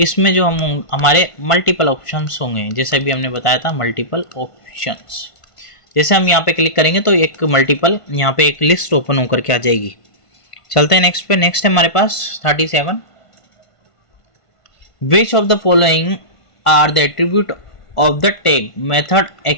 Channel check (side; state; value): right; late; 1.5 ms